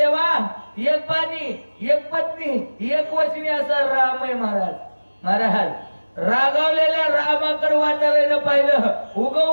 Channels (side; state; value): both; inverted; correlation -1.00